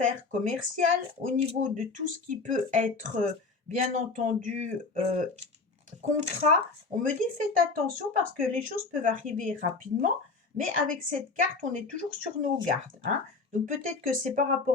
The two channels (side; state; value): right; quieter; 4.2 dB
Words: commerciales, au niveau de tout ce qui peut être, bien entendu, contrat, on me dit faites attention parce que les choses peuvent arriver rapidement. Mais avec cette carte, on est toujours sur nos gardes. Donc peut-être que c'est par